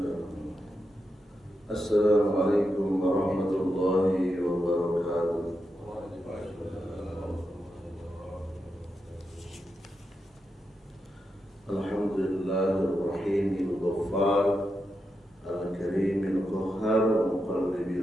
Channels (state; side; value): normal; both; correlation 0.86